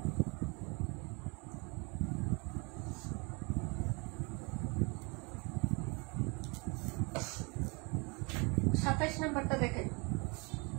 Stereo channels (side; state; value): left; quieter; 30.1 dB